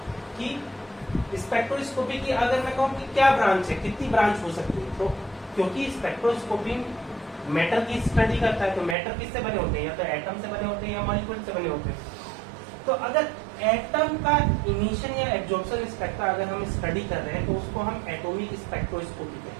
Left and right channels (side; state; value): left; drops out; at 9.0 s